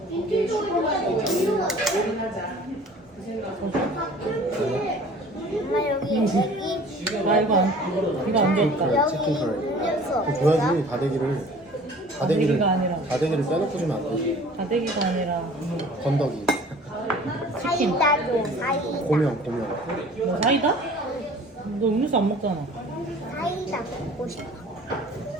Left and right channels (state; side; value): normal; both; correlation 0.47